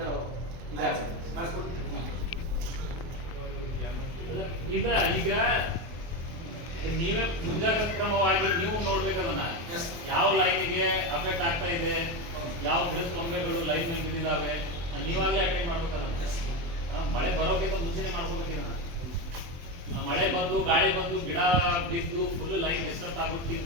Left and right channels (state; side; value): late; left; 24 ms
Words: ಅಂದ್ರೆ ಈಗ ನೀವೇ ಮುಂಜಾಗ್ರತಾ ಕ್ರಮವಾಗಿ ನೀವು ನೋಡ್ಬೇಕದನ್ನ, ಯಾವ ಲೈನ್ಗೆ ಅಫೆಕ್ಟ್ ಆಗ್ತಾ ಇದೆ, ಯಾವ ಗಿಡದ ಕೊಂಬೆಗಳು ಲೈನ್ ಬಿದ್ದಿದ್ದಾವೆ, ನೀವಾಗಲೇ ಅಟೆಂಡ್ ಮಾಡ್ಬೇಕದನ್ನ. ಮಳೆ ಬರೋಕ್ಕಿಂತ ಮುಂಚೆನೆ ಮಾಡ್ಕೋಬೇಕಿದನ್ನ. ಮಳೆ ಬಂದು ಗಾಳಿ ಬಂದು ಗಿಡ ಬಿದ್ದು ಫುಲ್ ಲೈನ್ ಡಿಸ್ಟರ್ಬ್